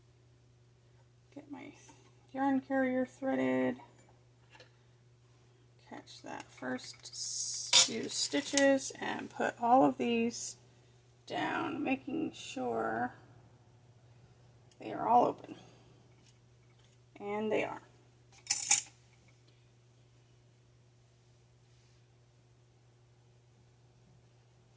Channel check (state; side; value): identical; both; correlation 1.00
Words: get my yarn carrier threaded. Catch that first few stitches and put all of these down, making sure they are all open. And they are.